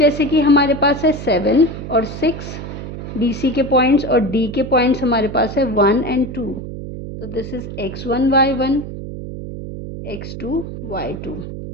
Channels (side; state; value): right; noise; hum, 9 dB below the sound